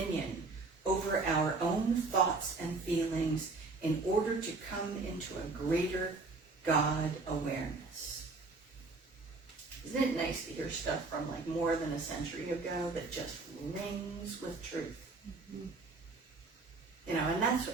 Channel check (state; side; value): quieter; left; 3.7 dB